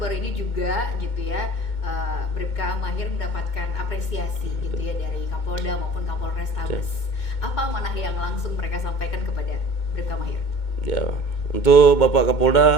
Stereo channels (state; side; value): late; right; 2.2 ms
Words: ini juga gitu ya, Bribka Mahir mendapatkan apresiasi gitu ya dari Kapolda maupun Kapolres Tabes. Apa amanah yang langsung mereka sampaikan kepada Bribka Mahir? Ya, untuk Bapak